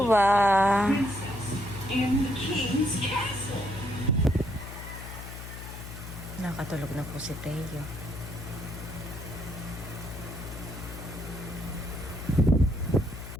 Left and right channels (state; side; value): noise; left; hum, 11 dB below the sound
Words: Nakatulog na po si Teo.